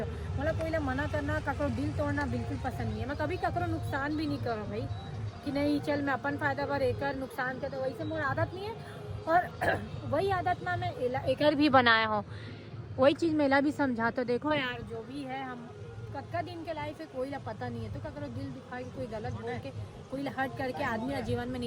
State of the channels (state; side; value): identical; both; correlation 1.00